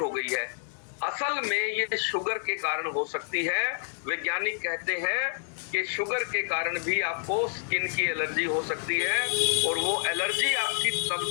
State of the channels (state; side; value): silent; right; digital silence